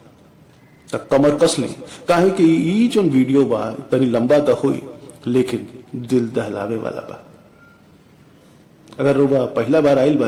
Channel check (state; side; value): identical; both; correlation 1.00